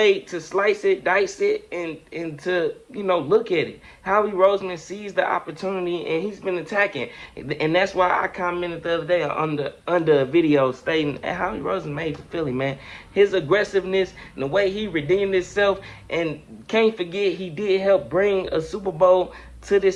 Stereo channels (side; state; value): both; identical; correlation 1.00